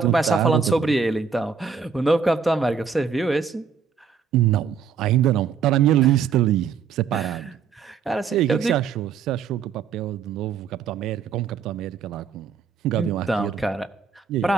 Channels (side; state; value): left; quieter; 6.3 dB